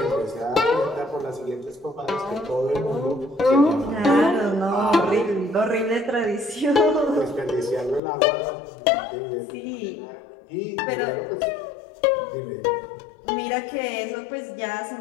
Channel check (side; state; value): right; drops out; at 8.0 s